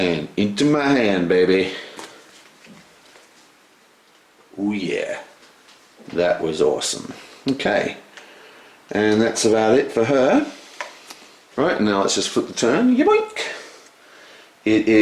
into my hand, baby. Oh yeah. That was awesome. Okay. And that's about it for her. Right, now let's just flip the turn. Yoink! It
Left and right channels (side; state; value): both; identical; correlation 1.00